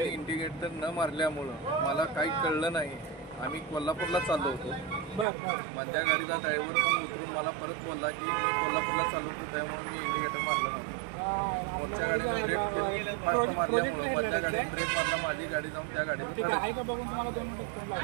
इंडिकेटर न मारल्यामुळं मला काही कळलं नाही। आम्ही कोल्हापूरला चाललो होतो। मधल्या गाडीचा ड्रायव्हर पण उतरून मला परत बोलला की मी कोल्हापूरला चाललो होतो, त्यामुळे मी इंडिकेटर मारला नव्हता। मोठ्या गाडीने ब्रेक केलं, फास्ट मारल्यामुळं मधल्या गाडीने ब्रेक मारला, माझी गाडी जाऊन त्या गाडीला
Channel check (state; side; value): drops out; left; at 5.2 s